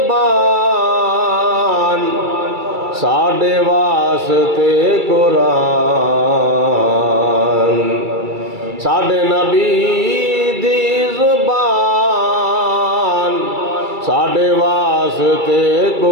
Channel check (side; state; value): left; late; 2.3 ms